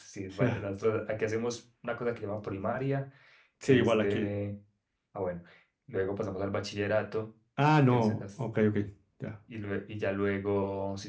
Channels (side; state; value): both; identical; correlation 1.00